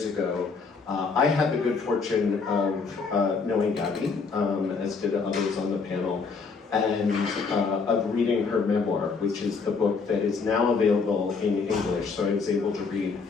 ago. I had the good fortune of knowing Gabby, as did others on the panel, and of reading her memoir, which is the book that is now available in English. So I was able to read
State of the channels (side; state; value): right; quieter; 4.9 dB